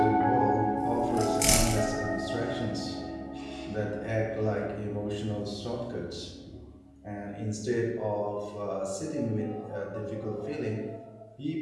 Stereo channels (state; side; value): identical; both; correlation 1.00